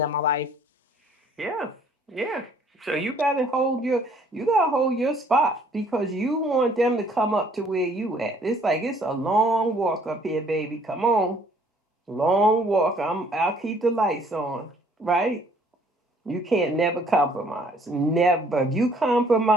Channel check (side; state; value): both; normal; correlation 0.60